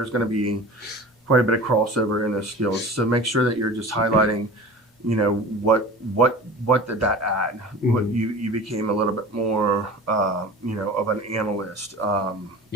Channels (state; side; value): normal; both; correlation 0.36